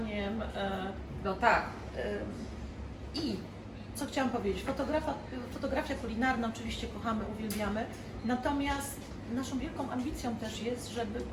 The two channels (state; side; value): identical; both; correlation 1.00